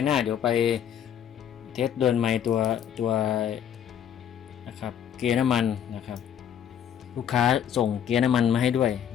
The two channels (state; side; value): quieter; right; 9.3 dB